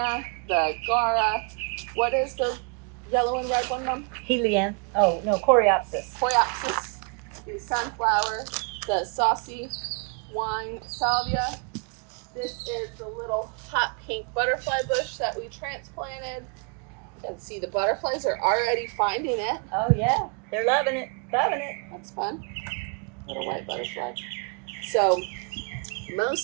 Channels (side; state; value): left; quieter; 36.5 dB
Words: the gaura. What is the yellow and red one, Mom? Helianthus. Oh, no, coreopsis. Coreopsis. The sunflower, the saucy wine salvia. This is the little hot pink butterfly bush that we transplanted. You can see the butterflies are already finding it. Oh, yeah. They're loving it. Loving it. That's fun. Little white butterfly. So